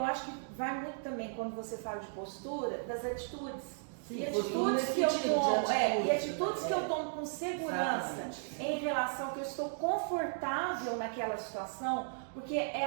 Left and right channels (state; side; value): silent; left; digital silence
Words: acho que vai muito também, quando você fala de postura, das atitudes. Sim, e atitudes que eu tomo, e atitudes que eu tomo com segurança. Exatamente. Em relação que eu estou confortável naquela situação, porque é